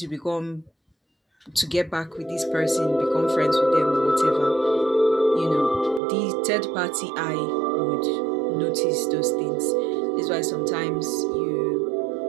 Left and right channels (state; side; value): drops out; left; at 6.0 s